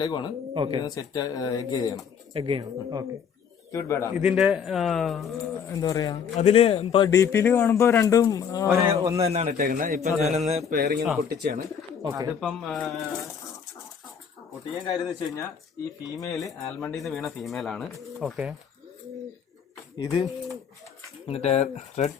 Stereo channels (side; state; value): right; quieter; 7.1 dB